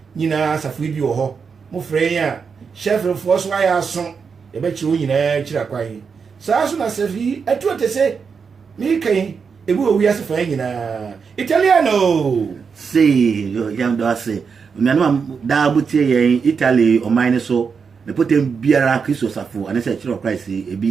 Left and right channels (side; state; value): left; quieter; 5.8 dB